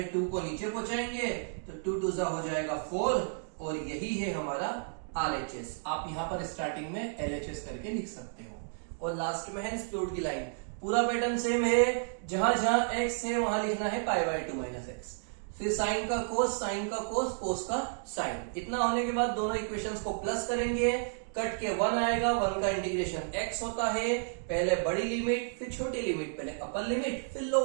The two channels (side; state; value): left; silent; digital silence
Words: 2 को नीचे पहुंचाएंगे तो 2 2 हो जाएगा 4, और यही है हमारा RHS। आप यहां पर स्टार्टिंग में LHS करके लिख सकते हो, और लास्ट में है स्प्लिट की लाइन। पूरा पैटर्न सेम है, जहां जहां x है वहां लिखना है π/2 माइनस एक्स, फिर साइन का कोस, साइन का कोस, कोस का साइन। इतना होने के बाद दोनों इक्वेशंस को प्लस करेंगे, कट के 1 आएगा, 1 का इंटीग्रेशन x होता है, पहले बड़ी लिमिट फिर छोटी लिमिट, पहले अपर लिमिट फिर